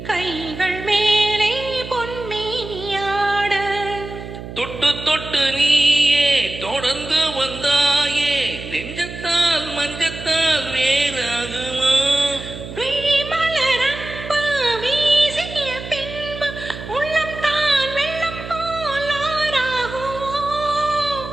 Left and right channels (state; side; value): noise; right; hum, 11 dB below the sound